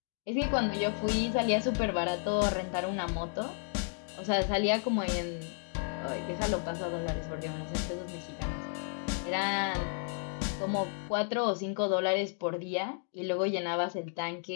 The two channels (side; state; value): right; silent; 56 dB below the other